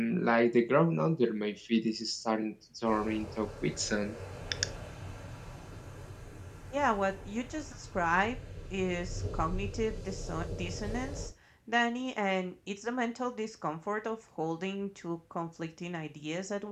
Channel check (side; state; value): both; identical; correlation 1.00